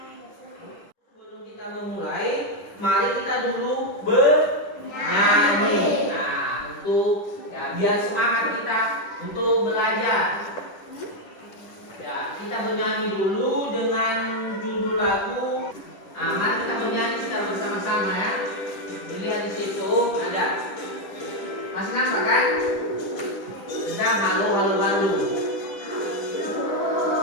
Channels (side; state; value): right; late; 10 ms